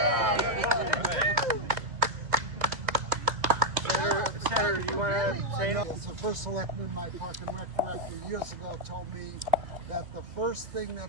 Senator, do you want to say anything? As the first selectman, my Park and Rec director years ago told me that the first thing that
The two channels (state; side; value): late; left; 2.1 ms